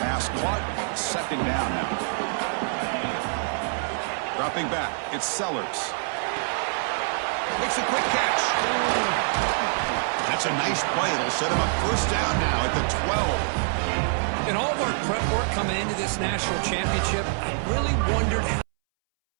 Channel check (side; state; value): left; silent; 61 dB below the other